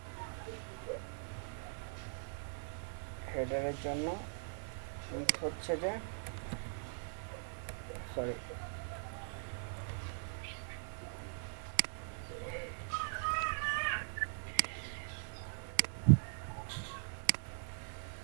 হেডারের জন্য উইথ হচ্ছে যে, সরি,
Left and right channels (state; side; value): silent; left; digital silence